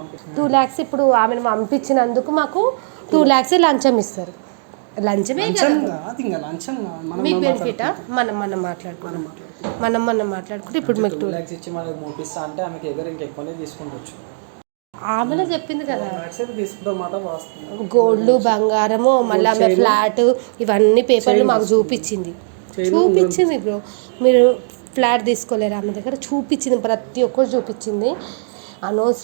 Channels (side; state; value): left; silent; digital silence